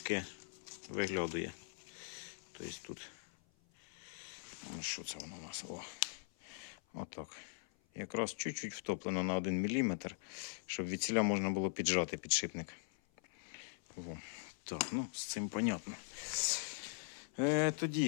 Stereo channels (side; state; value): right; silent; 50 dB below the other